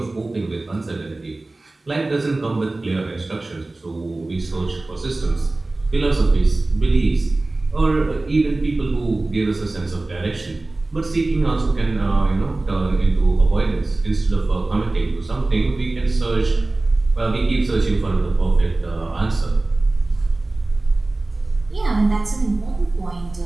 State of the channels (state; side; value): quieter; left; 3.0 dB